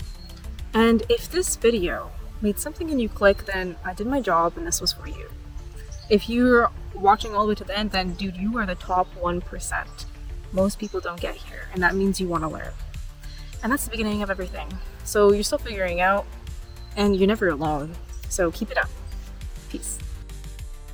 And if this video made something in you click, then I did my job and this was for you. If you're watching all the way to the end, then dude, you are the top 1%. Most people don't get here, and that means you want to learn. And that's the beginning of everything. So you're still figuring out, and you're never alone. So keep it up. Peace.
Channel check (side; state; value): both; identical; correlation 1.00